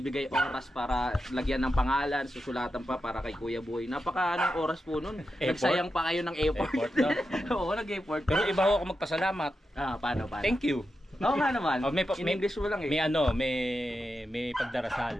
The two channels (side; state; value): both; normal; correlation 0.89